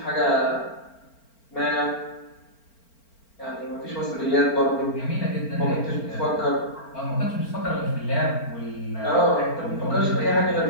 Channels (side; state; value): right; late; 4.4 ms